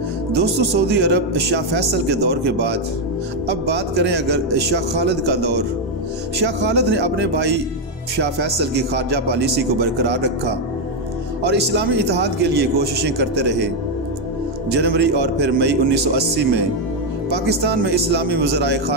दोस्तों, सऊदी अरब शाह फैसल के दौर के बाद अब बात करें अगर शाह खालिद का दौर। शाह खालिद ने अपने भाई शाह फैसल की खारजा पॉलिसी को बरकरार रखा और इस्लामी इत्तेहाद के लिए कोशिशें करते रहे। जनवरी और फिर मई 1980 में पाकिस्तान में इस्लामी वज़राए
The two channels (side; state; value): both; normal; correlation 0.03